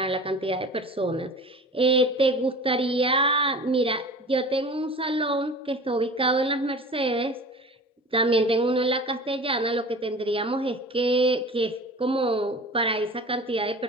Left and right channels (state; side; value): normal; both; correlation 0.39